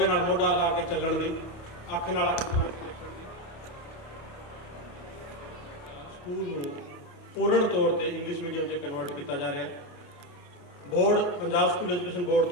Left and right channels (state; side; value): late; right; 28 ms